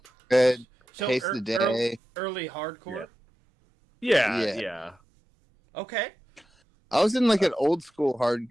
Good. So Taste the Day. early hardcore. Yeah. Okay. I was in like an old school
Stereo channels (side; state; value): both; normal; correlation 0.92